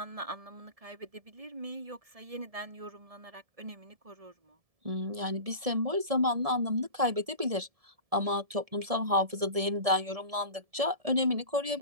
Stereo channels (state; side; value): late; left; 1.7 ms